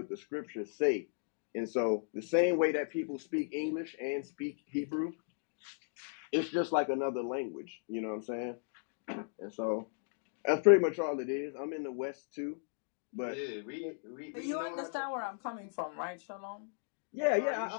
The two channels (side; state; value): right; silent; digital silence